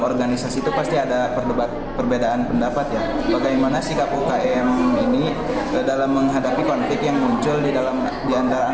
itu pasti ada perbedaan pendapat ya. Bagaimana sikap UKM ini dalam menghadapi konflik yang muncul di antara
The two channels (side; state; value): both; identical; correlation 1.00